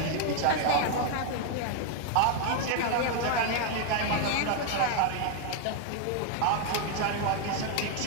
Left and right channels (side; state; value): both; different; correlation 0.00